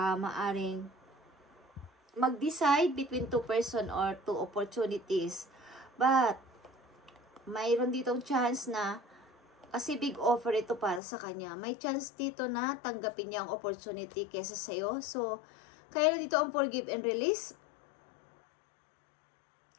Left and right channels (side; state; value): right; drops out; at 11.0 s